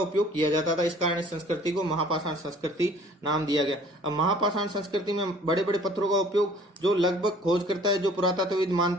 किया जाता था, इस कारण इस संस्कृति को महापाषाण संस्कृति नाम दिया गया। अब महापाषाण संस्कृति में बड़े बड़े पत्थरों का उपयोग जो लगभग खोज करता है, जो पुरातत्वविद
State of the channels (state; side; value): normal; both; correlation 0.53